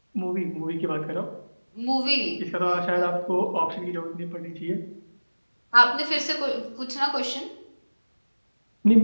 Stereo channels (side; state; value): both; inverted; correlation -1.00